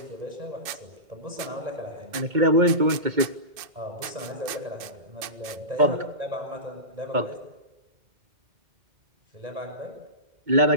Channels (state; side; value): late; left; 2.5 ms